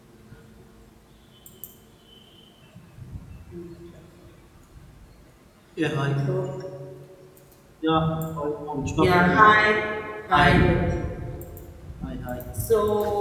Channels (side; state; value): both; identical; correlation 1.00